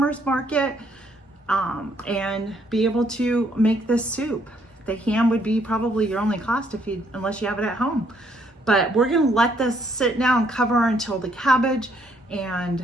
market, and be able to make this soup. The ham would be probably your only cost unless you have it at home. But we're gonna let this sit now and cover until the cabbage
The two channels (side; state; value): both; normal; correlation 0.69